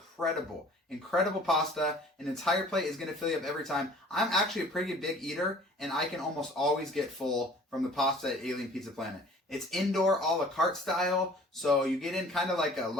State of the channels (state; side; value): normal; both; correlation 0.50